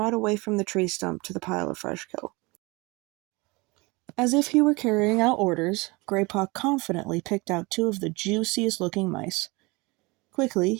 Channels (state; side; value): quieter; left; 25.1 dB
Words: away from the tree stump to the pile of fresh kill. As if he were carrying out orders, Greypaw confidently picked out 2 of the juiciest-looking mice. Quickly,